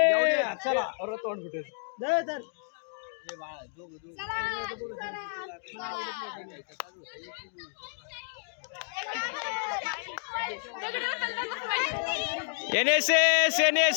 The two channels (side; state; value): right; silent; digital silence